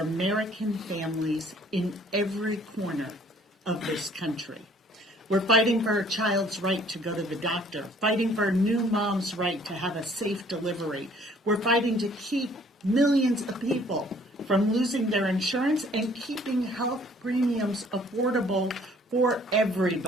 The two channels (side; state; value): both; normal; correlation 0.58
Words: families in every corner of this country. We're fighting for a child's right to go to the doctor, fighting for a new mom's right to have a safe delivery. We're fighting to keep millions of people from losing their insurance and keeping health premiums affordable for